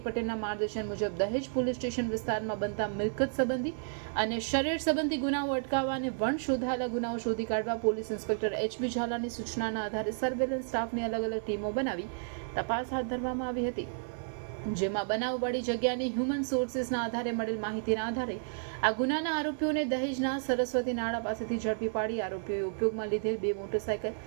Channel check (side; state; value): left; silent; 57 dB below the other